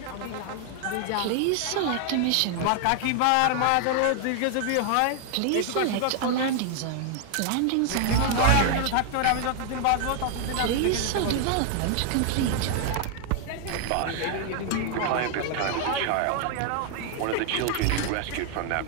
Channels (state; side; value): different; both; correlation 0.00